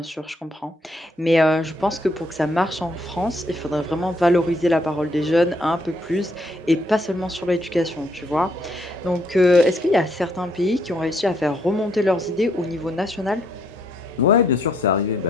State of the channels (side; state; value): both; normal; correlation 0.71